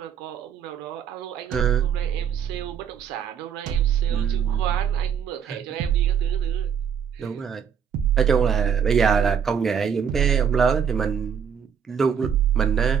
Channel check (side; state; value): left; quieter; 7.6 dB